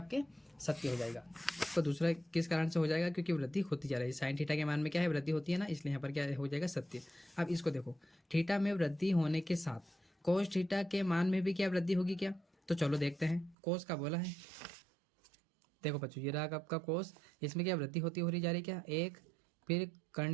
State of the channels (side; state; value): left; drops out; at 13.6 s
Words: सत्य हो जाएगा। तो दूसरा किस कारण से हो जाएगा, क्योंकि वृद्धि होती जा रही है, साइन थीटा के मान में क्या है, वृद्धि होती है ना, इसलिए यहाँ पर क्या हो जाएगा, सत्य। अब इसको देखो, थीटा में वृद्धि होने के साथ कोस थीटा के मान में भी क्या वृद्धि होगी क्या, तो चलो देखते हैं, कोस का बोला है। देखो बच्चों ये रहा आपका कोस, इसमें क्या वृद्धि होती हो रही जा रही क्या, 1, फिर